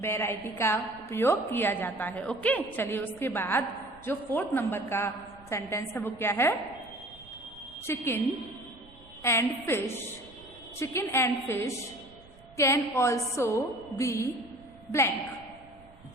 वैरायटी का उपयोग किया जाता है, ओके। चलिए उसके बाद जो 4th नंबर का सेंटेंस है वो क्या है, chicken and fish can also B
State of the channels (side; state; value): right; noise; rumble, 24 dB below the sound